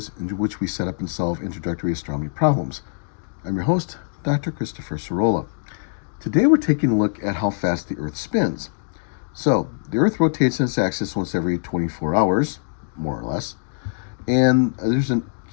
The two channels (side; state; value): right; silent; digital silence